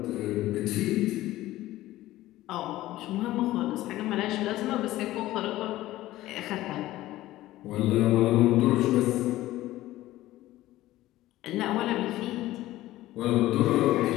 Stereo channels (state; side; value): quieter; right; 16.0 dB